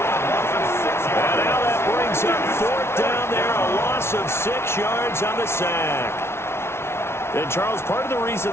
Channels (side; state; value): right; late; 0.12 ms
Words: And now that brings up 4th down there. A loss of 6 yards on the sack. And, Charles, part of the reason